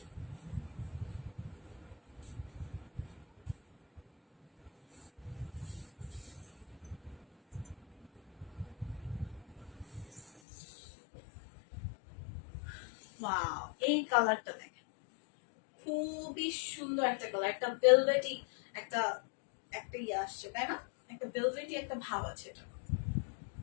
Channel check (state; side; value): drops out; right; at 10.2 s